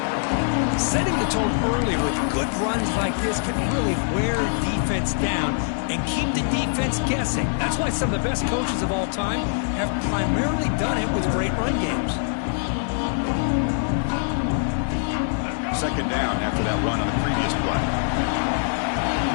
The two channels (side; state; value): right; silent; 63 dB below the other